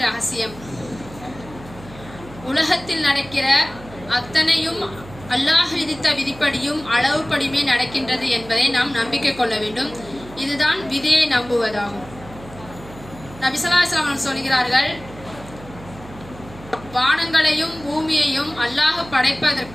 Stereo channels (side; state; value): right; noise; hum, 18 dB below the sound